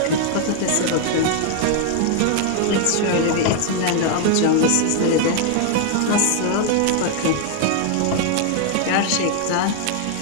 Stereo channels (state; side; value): different; both; correlation 0.00